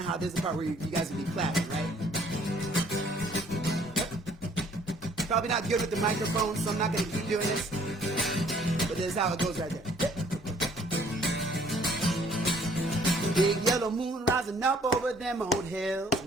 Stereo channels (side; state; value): both; normal; correlation 0.60